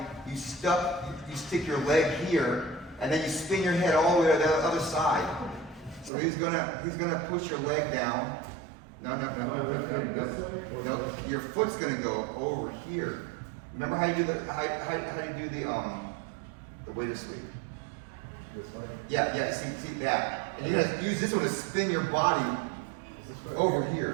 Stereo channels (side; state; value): left; drops out; at 6.1 s